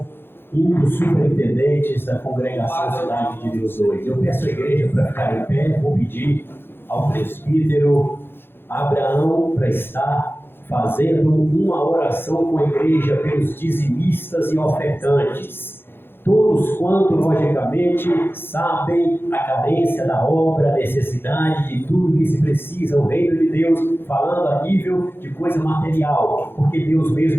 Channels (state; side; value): late; right; 0.10 ms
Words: um dos superintendentes da congregação Cidade de Deus 2. Eu peço à igreja para ficar em pé. Vou pedir ao presbítero Abraão para estar fazendo uma oração com a igreja pelos dizimistas e ofertantes. Todos quanto, logicamente, sabem a carência da obra, a necessidade de tudo que se precisa, o reino de Deus, falando a nível de coisa material, porque Deus